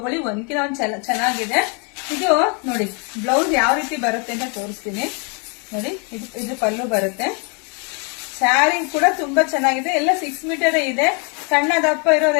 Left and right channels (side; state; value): right; quieter; 35.3 dB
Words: ಒಂದ್ಕಿನ ಒಂದ್ ಚೆನ್ನಾಗಿದೆ. ಇದು ನೋಡಿ ಬ್ಲೌಸ್ ಯಾವ ರೀತಿ ಬರುತ್ತೆ ಅಂತ ತೋರಿಸ್ತೀನಿ ನೋಡಿ. ಇದು ಪಲ್ಲು ಬರುತ್ತೆ. ಸ್ಯಾರಿ ಕೂಡ ತುಂಬಾ ಚೆನ್ನಾಗಿದೆ, ಎಲ್ಲ 6 ಮೀಟರ್ ಇದೆ. ಸಣ್ಣ ದಪ್ಪ